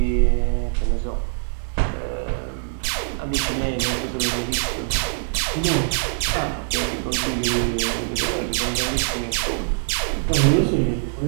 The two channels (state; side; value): silent; left; digital silence